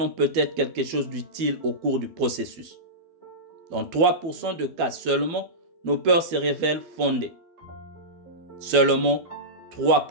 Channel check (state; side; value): late; left; 12 ms